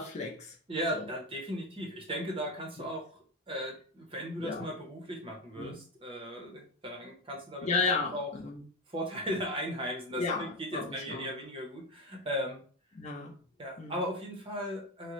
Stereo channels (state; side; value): normal; both; correlation 0.14